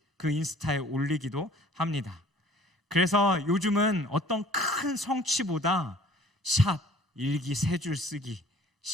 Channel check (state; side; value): normal; both; correlation 0.53